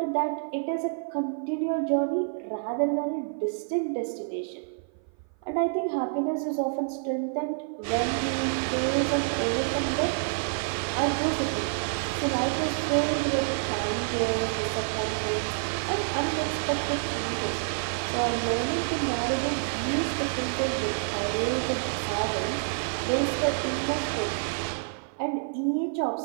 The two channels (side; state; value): left; silent; 55 dB below the other